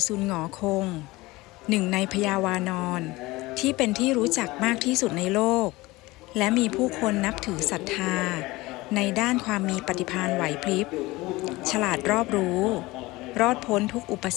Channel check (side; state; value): right; quieter; 20.6 dB